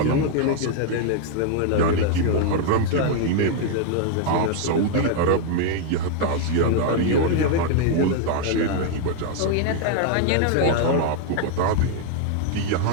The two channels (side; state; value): both; different; correlation 0.00